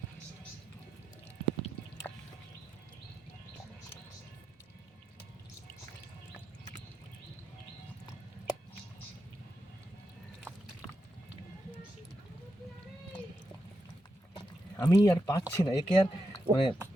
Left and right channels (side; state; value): both; normal; correlation 0.86